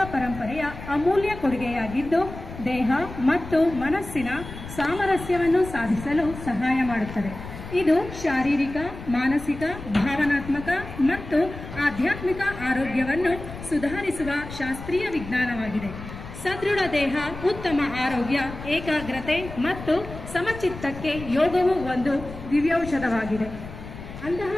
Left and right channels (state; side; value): noise; left; rumble, 12 dB below the sound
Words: ಪರಂಪರೆಯ ಅಮೂಲ್ಯ ಕೊಡುಗೆಯಾಗಿದ್ದು ದೇಹ ಮತ್ತು ಮನಸ್ಸಿನ ಸಾಮರಸ್ಯವನ್ನು ಸಾಧಿಸಲು ಸಹಾಯ ಮಾಡುತ್ತದೆ. ಇದು ಶಾರೀರಿಕ, ಮಾನಸಿಕ, ಭಾವನಾತ್ಮಕ ಮತ್ತು ಆಧ್ಯಾತ್ಮಿಕ ಆರೋಗ್ಯವನ್ನು ಸುಧಾರಿಸುವ ಶಾಸ್ತ್ರೀಯ ವಿಜ್ಞಾನವಾಗಿದೆ. ಸದೃಢ ದೇಹ, ಉತ್ತಮ ಆರೋಗ್ಯ, ಏಕಾಗ್ರತೆ ಮತ್ತು ಸಮಚಿತ್ತಕ್ಕೆ ಯೋಗವು ಒಂದು ದಿವ್ಯೌಷಧವಾಗಿದೆ. ಅಂತಹ